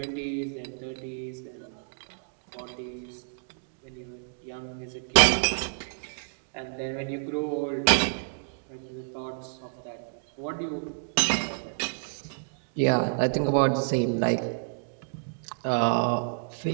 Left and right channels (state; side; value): silent; left; digital silence